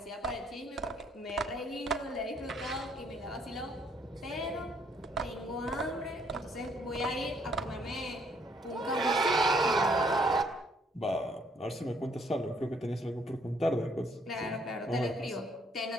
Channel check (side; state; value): both; normal; correlation 0.67